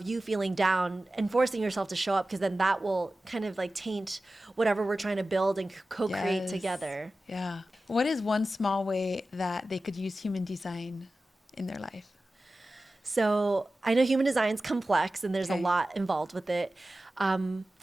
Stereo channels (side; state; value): both; normal; correlation 0.95